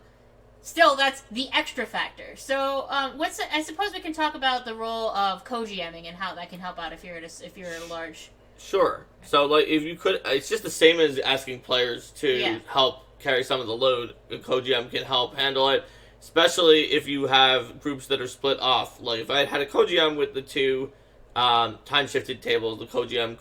still, that's the extra factor. So, I suppose we can talk about the role of co-GMing and how that can help out if you're at a large. Sure. So, like, if you could, it's just the same as asking players to help carry some of the load. A co-GM can help handle it, especially if you have groups that are split off. Like, if I had a co-GM with the 2 time-shifted tables, the co-GM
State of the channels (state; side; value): identical; both; correlation 1.00